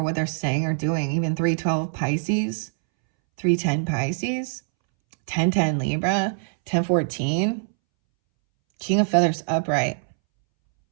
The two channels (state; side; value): silent; left; 63 dB below the other